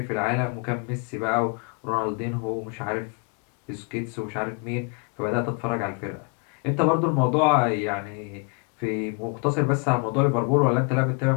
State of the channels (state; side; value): quieter; right; 35.2 dB